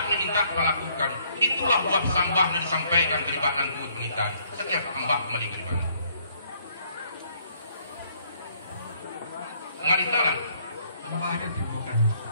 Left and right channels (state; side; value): inverted; both; correlation -0.66